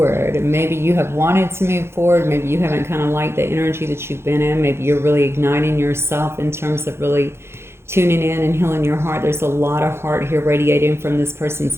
Maybe you have wanted to move forward. Maybe you haven't kind of liked the energy that you've been in. Maybe you're really igniting yourself in terms of really tuning in and healing your heart. There's a lot of heart here radiating from this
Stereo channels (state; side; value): late; left; 0.12 ms